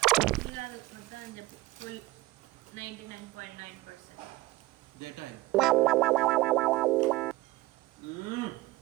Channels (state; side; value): quieter; left; 20.0 dB